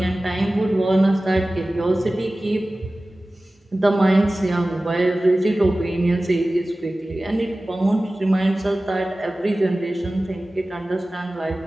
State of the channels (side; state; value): both; normal; correlation 0.97